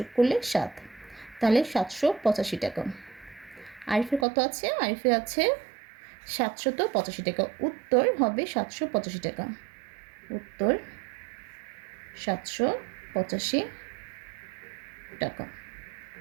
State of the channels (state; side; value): drops out; left; at 4.2 s